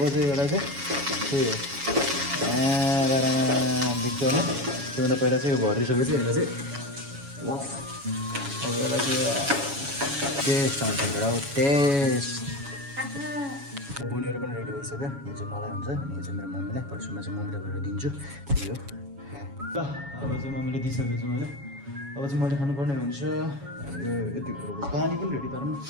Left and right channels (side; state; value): left; late; 7.2 ms